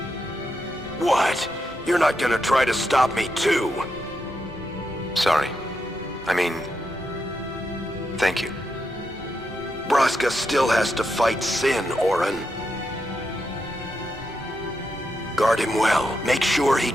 What? You're not gonna try to stop me too? Sorry. I mean, thank you. Braska still has to fight Sin, Auron. Guard him well. Make sure he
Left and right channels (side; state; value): both; normal; correlation 0.84